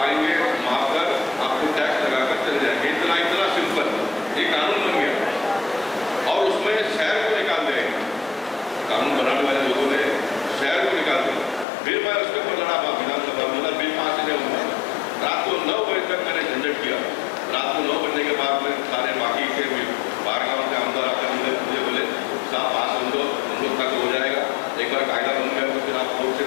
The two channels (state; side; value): drops out; right; at 11.7 s